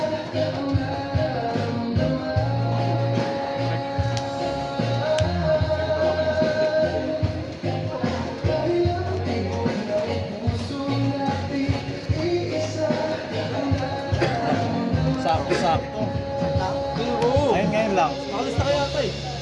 Sakto-sakto. Oo. Ayun ngayon lang. Nakalis na kaya ito eh.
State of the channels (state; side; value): identical; both; correlation 1.00